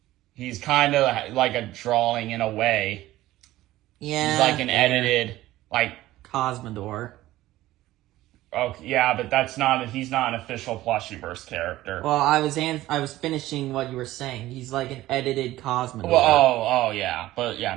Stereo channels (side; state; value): left; quieter; 15.9 dB